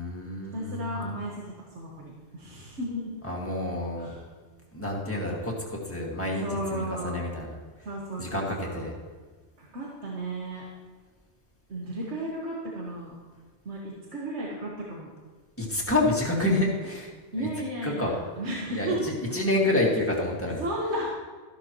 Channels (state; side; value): normal; both; correlation -0.06